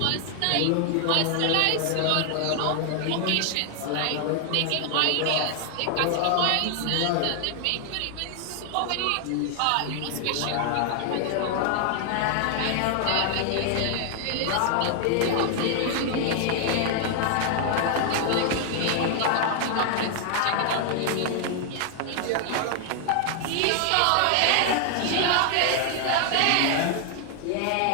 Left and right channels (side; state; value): both; different; correlation 0.00